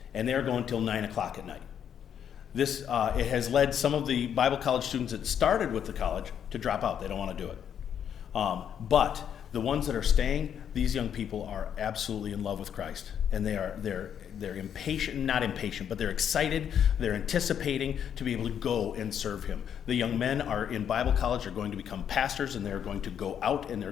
and they're going till 9 o'clock at night. This it has led some of the Bible college students that started with the college to drop out. They don't want to do it. But the ones that are staying, these young people are absolutely in love with Christ, and they're impatient, not impatient, but they're excited. They're anticipating to be able to go and serve Him. The young men are in Bible college. They're going to become pastors, and they're going to go out and they're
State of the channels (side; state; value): right; quieter; 8.8 dB